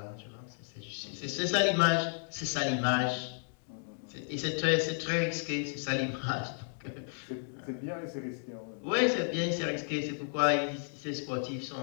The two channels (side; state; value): right; silent; 56 dB below the other